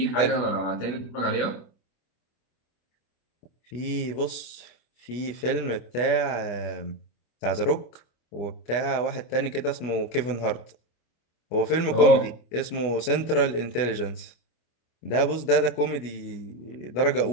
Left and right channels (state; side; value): late; right; 25 ms